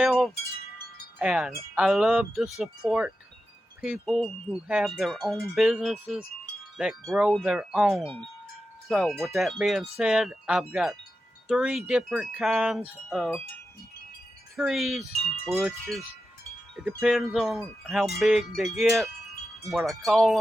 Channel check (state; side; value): normal; both; correlation 0.90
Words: and I love to support people who have their own businesses that grow their own. So, with that being said, I've got 3 different kinds of trees, bushes. It depends on how big they get, what I